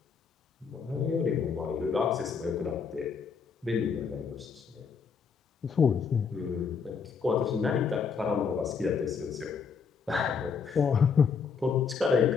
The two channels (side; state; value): right; quieter; 5.9 dB